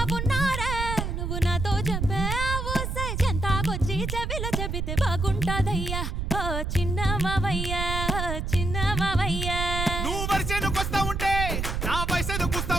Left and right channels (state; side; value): noise; right; rumble, 2 dB below the sound